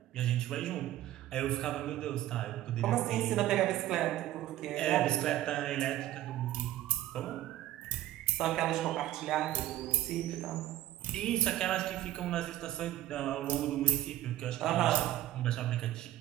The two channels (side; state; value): left; quieter; 14.1 dB